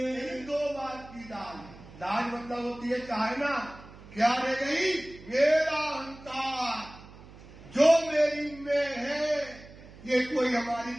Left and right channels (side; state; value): right; noise; hum, 19 dB below the sound